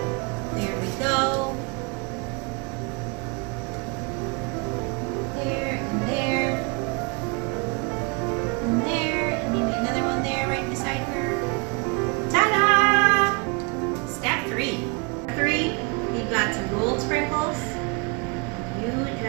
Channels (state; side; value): quieter; left; 31.0 dB